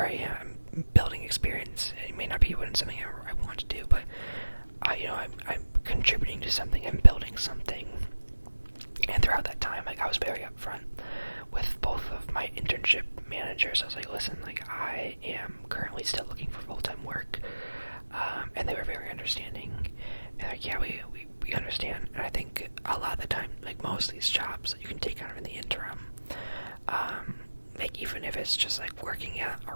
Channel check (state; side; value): inverted; both; correlation -1.00